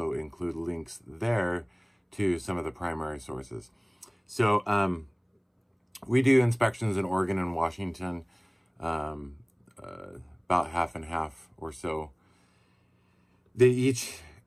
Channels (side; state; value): both; identical; correlation 1.00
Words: include links there to some of the primary sources. So we do inspections in Oregon and Washington, about half and half or so. They each,